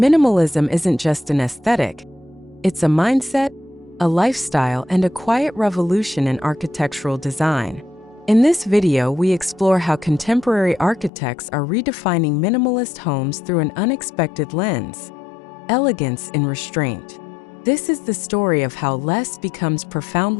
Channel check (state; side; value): drops out; right; at 11.1 s